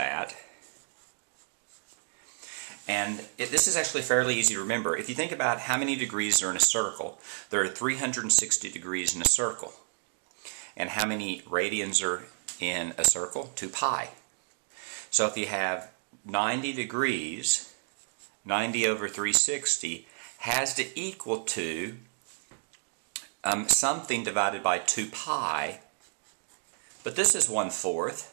And this is actually fairly easy to remember. If you think about how many degrees are in a circle, there are 360 degrees in a circle. And how many radians are in a circle? 2 pi. So if you have 90 degrees, 90 over 360 has to equal to something divided by 2 pi. But this is 1/4,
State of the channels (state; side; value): silent; left; digital silence